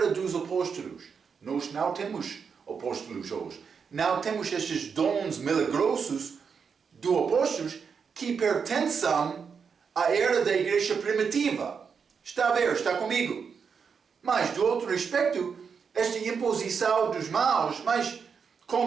dos apóstolos. Nós não temos apóstolos hoje. Não temos estes dons milagrosos dos apóstolos que pertencem à era da igreja primitiva. Está a ver? Está comigo? Mas, do outro aspecto, esta imposição dos mãos, mas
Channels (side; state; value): left; quieter; 6.2 dB